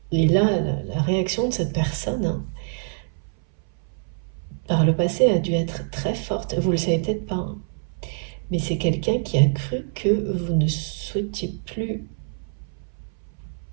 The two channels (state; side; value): silent; left; 61 dB below the other